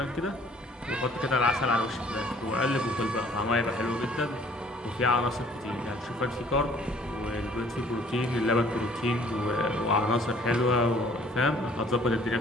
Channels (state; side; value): normal; both; correlation 0.57